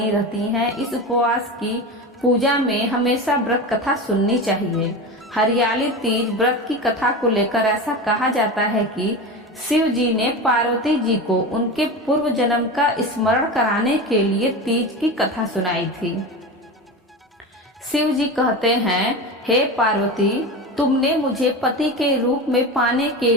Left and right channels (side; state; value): both; normal; correlation 0.25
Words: रहती हैं। इस उपवास की पूजा में हमेशा व्रत कथा सुननी चाहिए। हरियाली तीज व्रत की कथा को लेकर ऐसा कहा जाता है कि शिव जी ने पार्वती जी को उनके पूर्व जन्म का स्मरण कराने के लिए तीज की कथा सुनाई थी। शिव जी कहते हैं, हे पार्वती, तुमने मुझे पति के रूप में पाने के